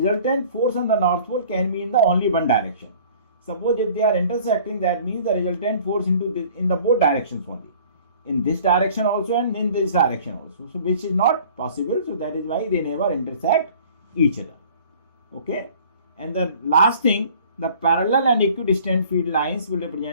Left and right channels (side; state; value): both; inverted; correlation -0.50